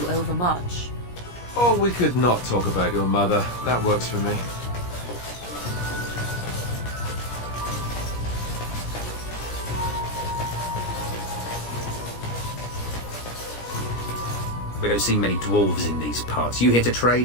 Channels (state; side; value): late; right; 17 ms